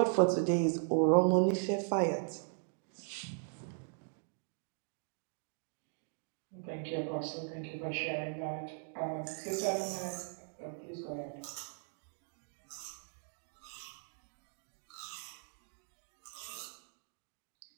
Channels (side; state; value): left; silent; 52 dB below the other